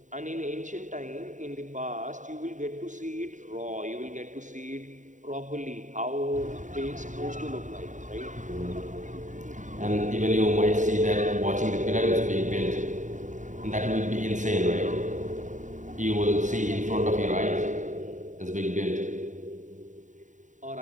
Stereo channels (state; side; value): late; left; 0.36 ms